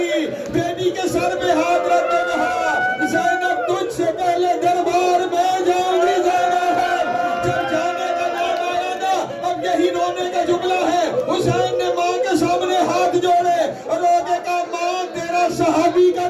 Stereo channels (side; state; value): both; identical; correlation 1.00